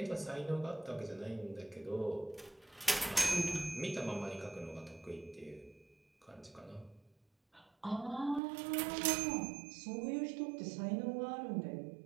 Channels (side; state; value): left; drops out; at 8.4 s